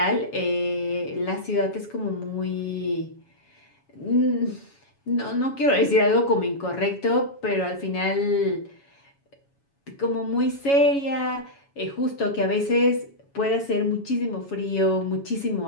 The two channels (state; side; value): late; right; 7.2 ms